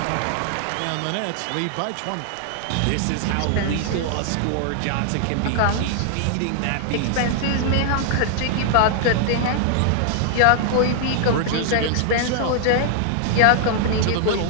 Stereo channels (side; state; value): both; different; correlation -0.01